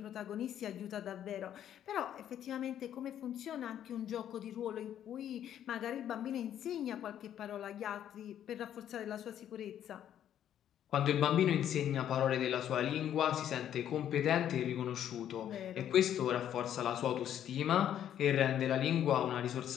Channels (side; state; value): right; quieter; 10.4 dB